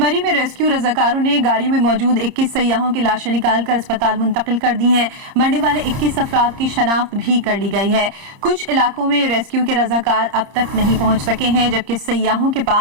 में रेस्क्यू रजाकारों ने गाड़ी में मौजूद 21 सयाहों की लाशें निकालकर अस्पताल मुंतकिल कर दी हैं। मरने वाले 21 अफराद की शनाख्त भी कर ली गई है। कुछ इलाकों में रेस्क्यू के रजाकार अब तक नहीं पहुंच सके हैं, जबकि सयाहों के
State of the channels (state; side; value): late; left; 30 ms